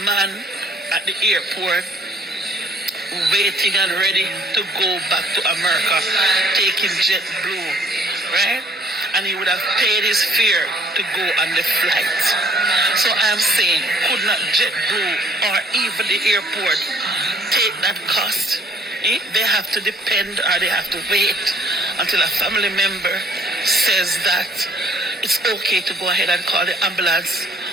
man at the airport waiting and ready to go back to America, taking JetBlue, right? And he would have paid his fare to go on the flight. So I'm saying, could not JetBlue or even the airport take that cost? They have to depend or they have to wait until a family member says that it's okay to go ahead and call the ambulance.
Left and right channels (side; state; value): both; normal; correlation 0.61